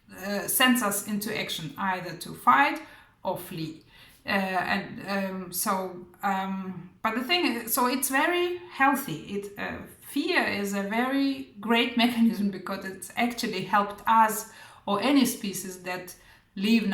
sends us into action, either to fight or flee. But the thing is, so it's very healthy. Fear is a very great mechanism because it's actually helped us or any species that live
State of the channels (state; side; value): identical; both; correlation 1.00